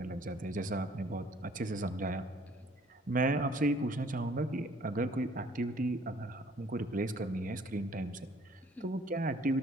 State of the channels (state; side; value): normal; both; correlation 0.58